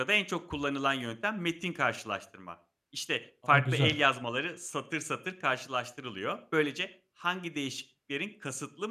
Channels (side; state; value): both; identical; correlation 1.00